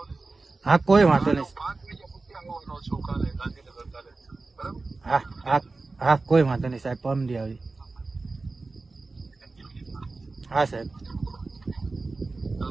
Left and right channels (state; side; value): quieter; left; 3.6 dB